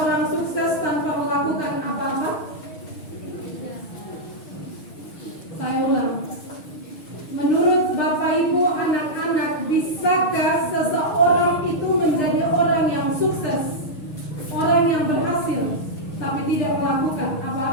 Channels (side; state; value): right; late; 6.3 ms